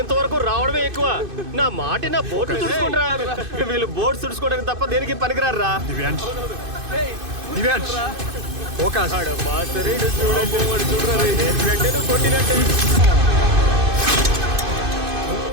రావడమే ఎక్కువ. నా మాట నా బోట్లు తుడుచుకుంటా. వీళ్ళు బోట్ తుడుచుకోవడానికి తప్ప దేనికి పనికిరారా. దివ్యాంష్ దివ్యాంష్ ఫోకస్. కొట్టినట్టే.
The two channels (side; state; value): left; late; 2.5 ms